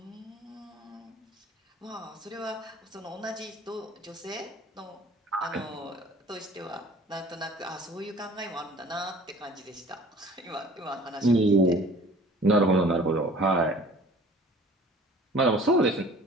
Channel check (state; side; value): normal; both; correlation 0.48